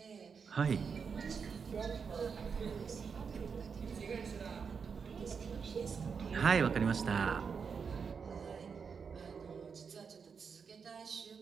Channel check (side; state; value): left; quieter; 6.0 dB